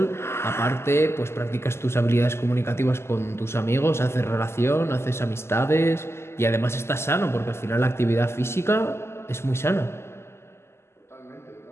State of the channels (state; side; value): late; right; 0.12 ms